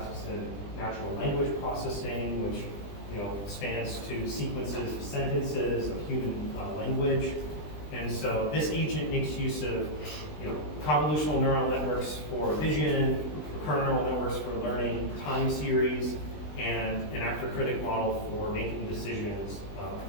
in natural language processing, which spans to sequences of sentences of human language. And so this agent makes use of convolutional neural networks for vision, recurrent neural networks for learning time series, and an actor critic model for making decisions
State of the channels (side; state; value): right; late; 20 ms